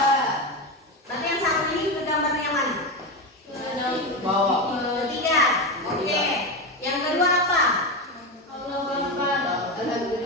Berarti yang satu ini gambarnya yang mana? Ketiga. Oke. Yang kedua apa? Alhamdulillah.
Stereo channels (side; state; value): both; normal; correlation 0.16